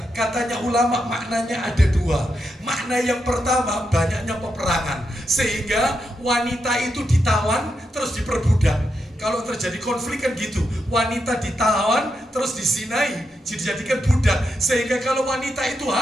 Katanya ulama maknanya ada 2. Makna yang pertama, banyaknya peperangan, sehingga wanita itu ditawan terus diperbudak. Kalau terjadi konflik kan gitu, wanita ditawan terus disinai, dijadikan budak. Sehingga kalau wanita itu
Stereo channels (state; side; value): normal; both; correlation 0.84